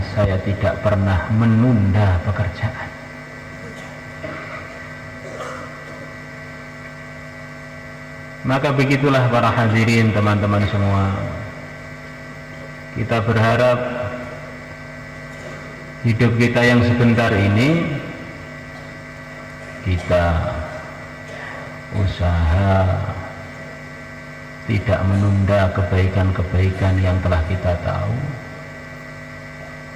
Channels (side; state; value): both; identical; correlation 1.00